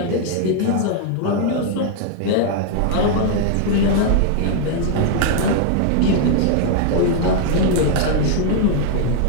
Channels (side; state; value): both; different; correlation 0.00